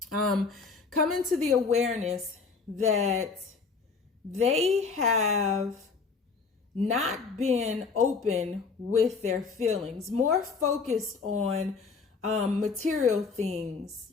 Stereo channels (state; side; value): quieter; right; 4.7 dB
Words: Come into the awareness that they have not been open with their feelings, more focused on material things,